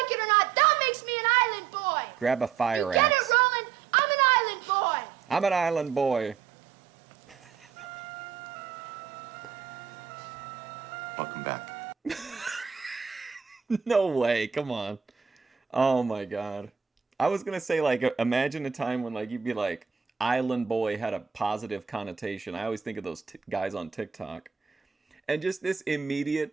like it or not, that makes me an island boy. Grab a fire You get axe. it, Roland? I'm an island boy. I'm an island boy. Welcome back. No way. Come on. Oh my god. I was gonna say, like, imagine a time when, like, you'd be like, island boy had a positive connotation. I always think of those guys on TikTok. And just this immediate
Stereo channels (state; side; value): quieter; left; 6.9 dB